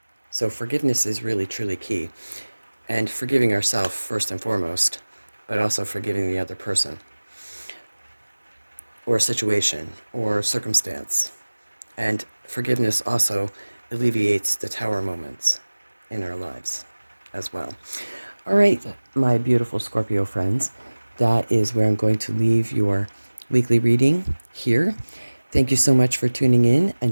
So forgiveness is really truly key, and forgiving ourselves first and foremost, but also forgiving the other person or situation or circumstance. And forgiveness also alleviates the tower moments in our lives as well. All right, my beautiful Scorpio friends, that is where I'm going to leave your weekly reading here. Thank you so much for tuning in.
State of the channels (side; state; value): both; inverted; correlation -1.00